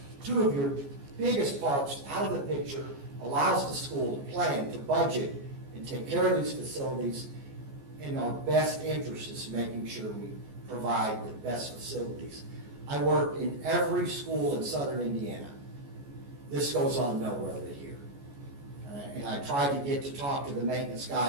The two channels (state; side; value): late; left; 14 ms